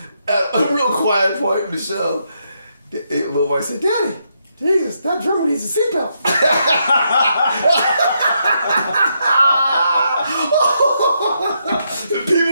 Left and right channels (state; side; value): inverted; both; correlation -0.79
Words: at a real quiet point in the show, the little boy said, Daddy, Jesus, that drummer needs a seatbelt.